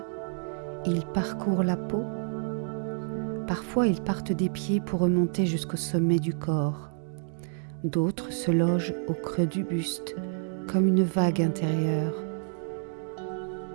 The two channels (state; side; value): silent; left; digital silence